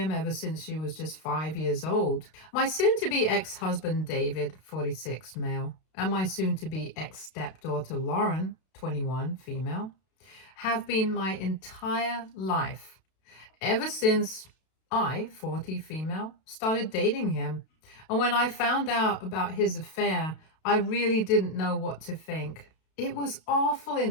ever since she was just 5 years old. My soon-to-be ex-husband, David, 46, male, and my soon-to-be ex-stepdaughter, Lauren, 21, female, have been my entire life ever since I, 40 female, started dating him. And when I found out about his affair, I really didn't know what to think. It was awful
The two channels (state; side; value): late; right; 32 ms